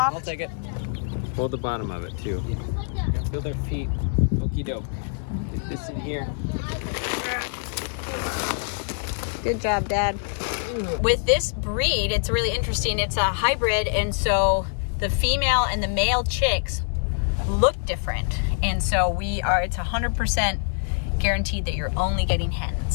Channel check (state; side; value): silent; right; digital silence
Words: I'll take it. Hold the bottom of it too. Feel their feet. Okie doke. Get this in here. Good job, Dad. With this breed, it's really interesting. It's a hybrid, and so the female and the male chicks look different. And so it's 100% guaranteed that you're only getting